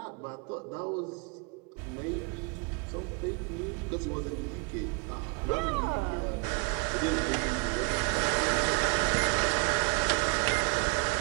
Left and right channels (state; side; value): quieter; left; 33.5 dB